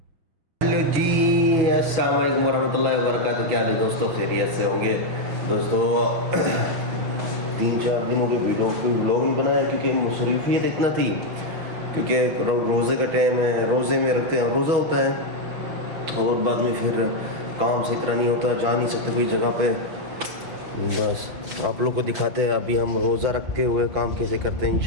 हेलो जी, अस्सलाम वालेकुम वरहमतुल्लाहि वबरकातुहू। क्या हाल है दोस्तों, खैरियत से होंगे दोस्तों। 3-4 दिनों कोई वीडियो कोई व्लॉग नहीं बनाया क्योंकि मसरूफियत इतना थी, क्योंकि रोज़े का टाइम है, रोज़े में रखते हैं, रोज़ा होता है और बाद में फिर काम से इतना नहीं होता, जा नहीं सकते कोई जगह पे। बस आप लोग को दिखाते हैं अभी हम रोज़ा रखते हुए काम कैसे करते हैं,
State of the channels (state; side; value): late; left; 6.3 ms